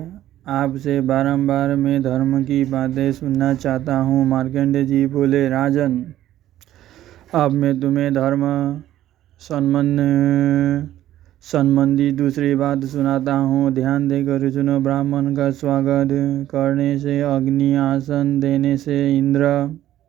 आपसे बारंबार मैं धर्म की बातें सुनना चाहता हूँ। मार्कंडेय जी बोले, राजन, अब मैं तुम्हें धर्म संबंधी दूसरी बात सुनाता हूँ। ध्यान देकर सुनो। ब्राह्मण का स्वागत करने से अग्नि, आसन देने से इंद्र,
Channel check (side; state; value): left; quieter; 13.1 dB